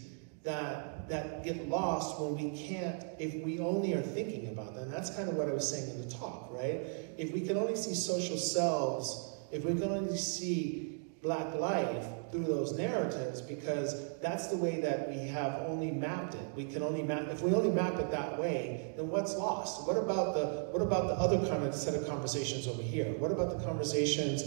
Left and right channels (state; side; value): silent; left; 54 dB below the other